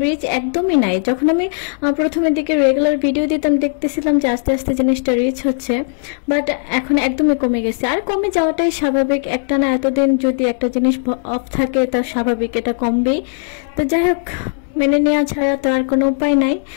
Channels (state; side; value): silent; right; digital silence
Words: রিচ একদমই নাই। যখন আমি প্রথমের দিকে রেগুলার ভিডিও দিতাম, দেখতেছিলাম যে আস্তে আস্তে জিনিসটা রিচ হচ্ছে, বাট এখন একদমই কমে গেছে। আর কমে যাওয়াটাই স্বাভাবিক, একটা না এতদিন যদি একটা জিনিস অফ থাকে তা স্বাভাবিক, এটা কমবেই। তো যাই হোক, মেনে নেওয়া ছাড়া তো আর কোনো উপায় নাই।